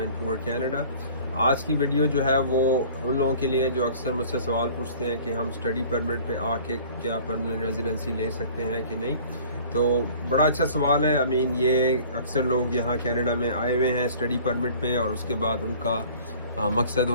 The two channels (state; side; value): inverted; both; correlation -0.49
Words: Canada. آج کی video جو ہے وہ ان لوگوں کے لیے جو اکثر مجھ سے سوال پوچھتے ہیں کہ ہم اسٹڈی پرمٹ پہ آ کے کیا پرماننٹ ریزیڈنسی لے سکتے ہیں کہ نہیں. تو بڑا اچھا سوال ہے. یہ اکثر لوگ یہاں کینیڈا میں آئے ہوئے ہیں اسٹڈی پرمٹ پہ، اور اس کے بعد ان کا مقصد